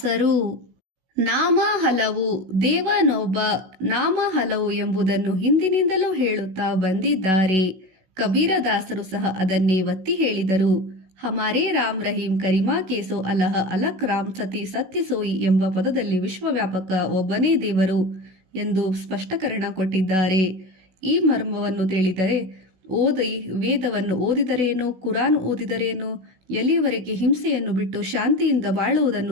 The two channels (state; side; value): late; left; 16 ms